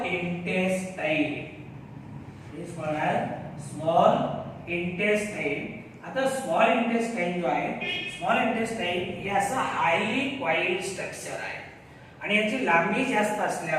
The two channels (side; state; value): both; identical; correlation 1.00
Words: intestine. Is called as small intestine. आता स्मॉल इंटेस्टाइन जो आहे, स्मॉल इंटेस्टाइन हे असं हायली कॉइल्ड स्ट्रक्चर आहे आणि याची लांबी जास्त